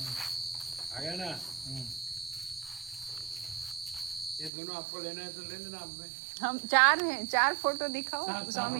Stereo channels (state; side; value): drops out; left; at 4.5 s